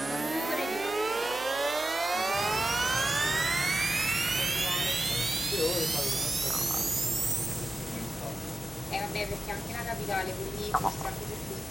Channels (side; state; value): right; noise; hum, 22 dB below the sound